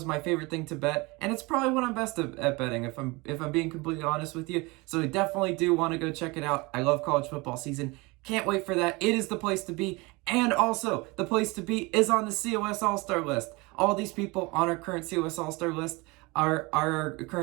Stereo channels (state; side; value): quieter; left; 25.1 dB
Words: my favorite thing to bet, and it's probably what I'm best at betting, if I'm being completely honest with you. So I definitely do want to go check it out. I love college football season. Can't wait for that. It is the place to be. And also, the place to be is on the COS All-Star list. All these people on our current COS All-Star list are our